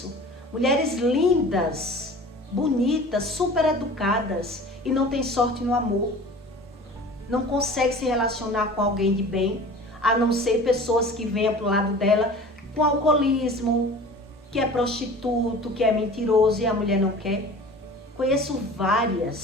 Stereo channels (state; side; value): normal; both; correlation 0.41